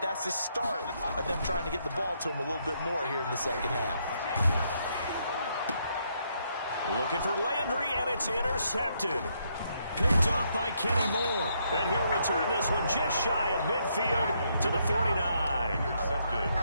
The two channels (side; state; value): both; inverted; correlation -0.74